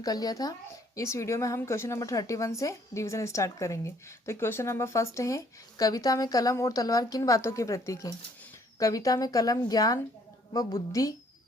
लिया था। इस वीडियो में हम क्वेश्चन नंबर 31 से रिवीजन स्टार्ट करेंगे। तो क्वेश्चन नंबर फर्स्ट है, कविता में कलम और तलवार किन बातों के प्रतीक हैं? कविता में कलम ज्ञान व बुद्धि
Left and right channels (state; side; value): normal; both; correlation 0.63